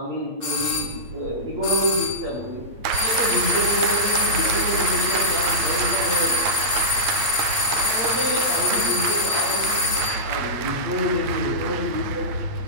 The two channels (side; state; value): left; late; 8.8 ms